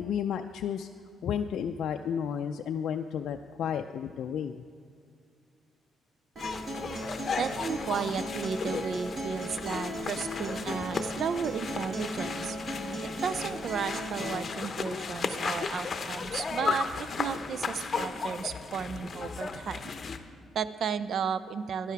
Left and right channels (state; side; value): normal; both; correlation 0.70